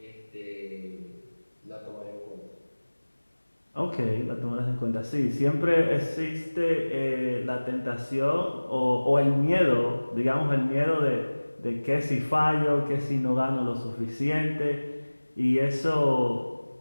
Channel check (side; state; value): both; inverted; correlation -1.00